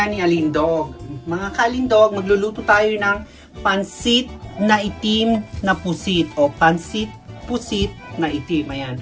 ni Alindog. Mga kalindog, magluluto tayo ng pansit na itim na pusit o pansit pusit na itim. Ayan.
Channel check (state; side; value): identical; both; correlation 1.00